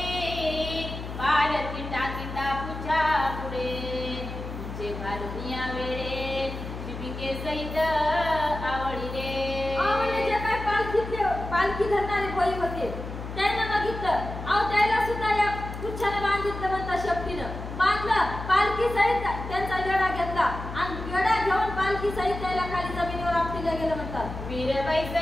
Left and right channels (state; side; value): noise; left; hum, 8 dB below the sound